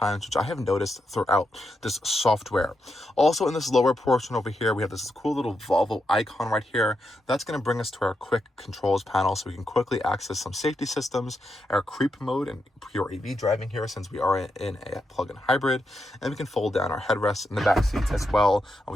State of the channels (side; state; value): both; normal; correlation 0.84